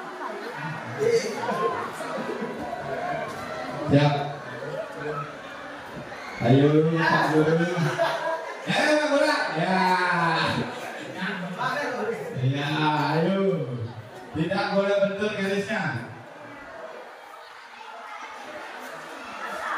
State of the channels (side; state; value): both; identical; correlation 1.00